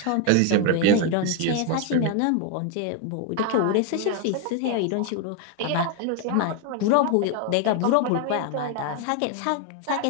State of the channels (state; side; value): different; both; correlation 0.01